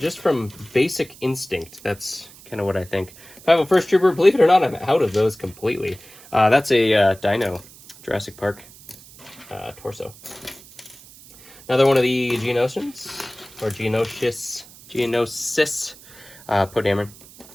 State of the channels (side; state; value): right; noise; hiss, 21 dB below the sound